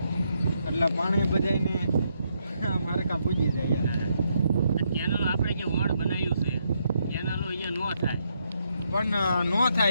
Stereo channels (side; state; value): both; inverted; correlation -0.78